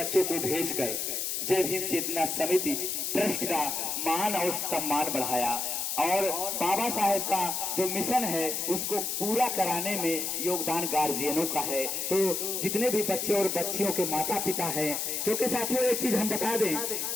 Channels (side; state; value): left; noise; hiss, 1 dB below the sound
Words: को भेजकर जय भीम चेतना समिति ट्रस्ट का मान और सम्मान बढ़ाया और बाबा साहेब का जो मिशन है उसको पूरा कराने में योगदान गार्जियनों का है। तो जितने भी बच्चे और बच्चियों के माता पिता हैं, क्योंकि साथियों एक चीज हम बता दें